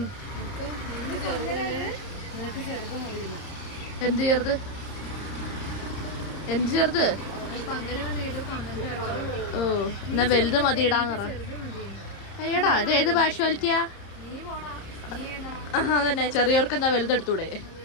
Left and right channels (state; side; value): late; right; 30 ms